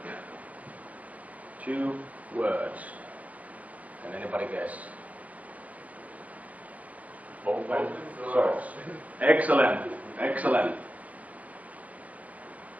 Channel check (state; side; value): late; left; 0.070 ms